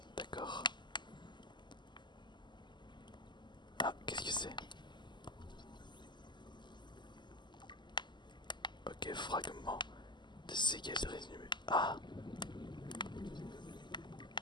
d'accord. Ah, qu'est-ce que c'est? Ok, fragment de séquelles résumé. Ah.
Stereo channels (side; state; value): right; late; 0.22 ms